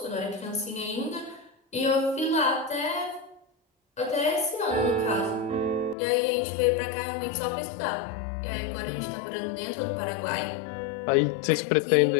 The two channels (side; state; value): right; drops out; at 6.0 s